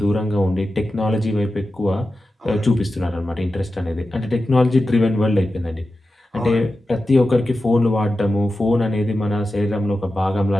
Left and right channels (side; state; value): both; normal; correlation 0.92